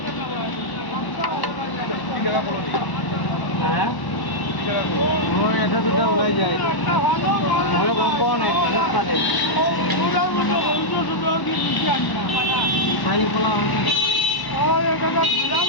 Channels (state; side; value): late; right; 1.0 ms